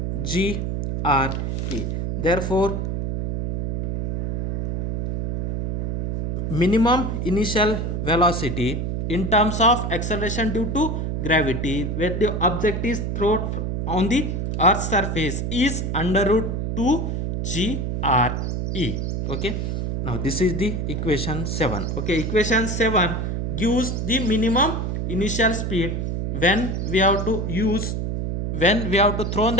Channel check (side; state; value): right; noise; hum, 2 dB below the sound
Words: g re. Therefore minimum initial velocity in terms of acceleration due to gravity where the object is thrown on the earth's surface is under root 2 g re. Okay, now this is the equation 7. Okay, equation 7 gives the minimum initial speed when we have to throw